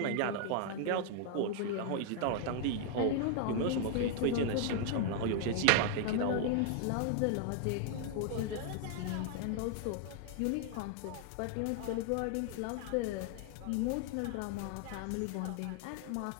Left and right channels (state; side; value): different; both; correlation 0.00